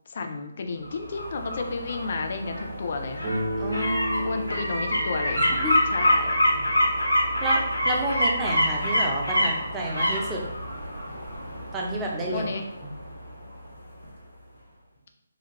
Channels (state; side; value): inverted; both; correlation -0.81